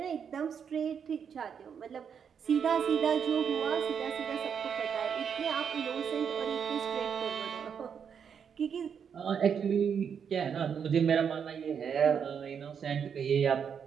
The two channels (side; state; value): left; quieter; 7.3 dB